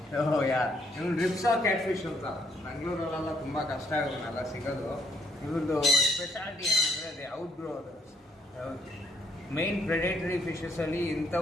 ಯಾ ಇವ್ನು ರಿಪ್ಸಾ ಕ್ಯಾಟ್ ಫಿಶ್ ಅಂತ ಬೆಂಗಳೂರಲ್ಲೆಲ್ಲ ತುಂಬ ಕಷ್ಟ ಇವನ್ನೆಲ್ಲ ಸಿಗೋದು. ಇವ್ರದ್ದು ಸ್ಪೆಷಾಲಿಟಿ ಏನಂದರೆ ಅದೇ ಔಟ್ ಗ್ರೋ ಅದು. ಮೈನ್ ಪ್ರೆಡೇಟರಿ ಫಿಶಸಲ್ಲಿ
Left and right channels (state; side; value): normal; both; correlation 0.69